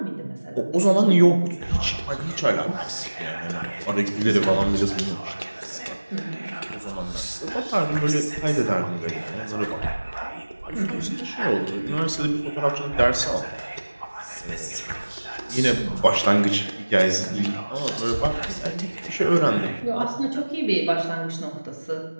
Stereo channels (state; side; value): inverted; both; correlation -1.00